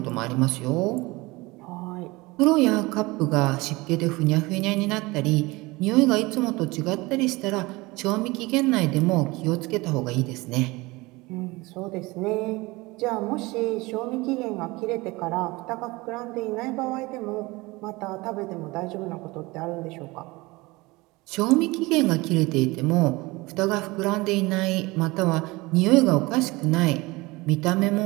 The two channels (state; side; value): quieter; left; 22.4 dB